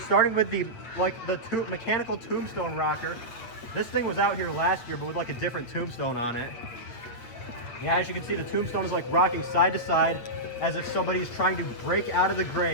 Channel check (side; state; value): right; late; 8.5 ms